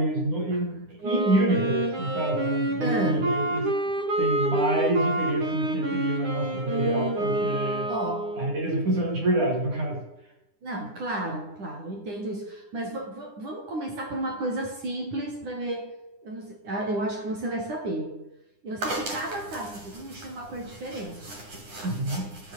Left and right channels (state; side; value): late; left; 9.8 ms